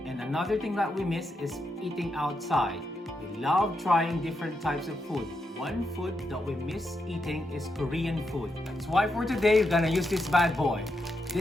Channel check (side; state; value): both; normal; correlation 0.83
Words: And another thing that we miss is eating outside. We love trying different types of food. One food that we miss eating is Korean food. That's why for today, we're gonna use this bad boy.